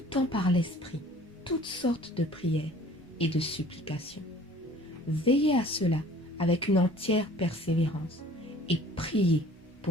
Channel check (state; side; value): normal; both; correlation 0.50